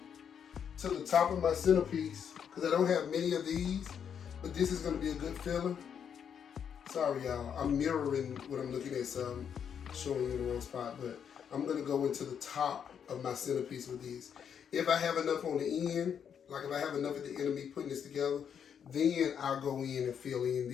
to the top of my centerpiece, because I don't have many of these, but this is going to be a good filler. Sorry, y'all. I'm mirroring what I'm looking at, so I'm showing you in the wrong spot, but I'm going to go into the top of my centerpiece with these. If I have enough on the end, like if I have enough at the end of me putting this together, then I'll go in and fill in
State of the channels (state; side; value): quieter; right; 7.9 dB